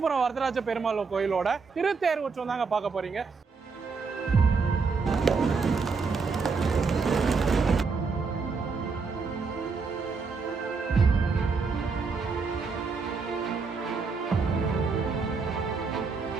வரதராஜ பெருமாள் கோயிலோட திருத்தேர் உற்சவம் தாங்க பார்க்க போறீங்க.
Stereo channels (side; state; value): left; quieter; 4.8 dB